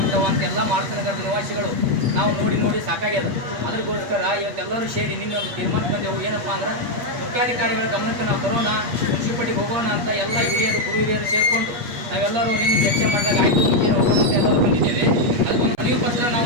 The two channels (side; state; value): left; late; 8.4 ms